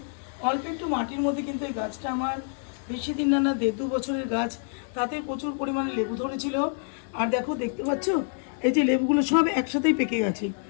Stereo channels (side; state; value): right; silent; 60 dB below the other